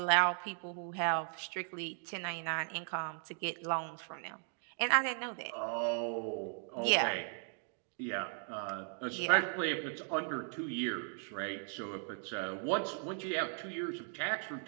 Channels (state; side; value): silent; left; 53 dB below the other